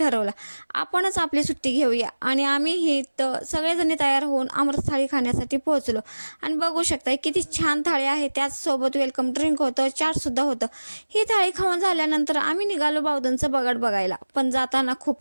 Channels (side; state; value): both; inverted; correlation -1.00